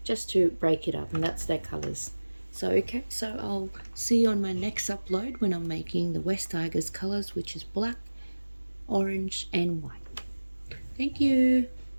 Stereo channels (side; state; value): both; inverted; correlation -1.00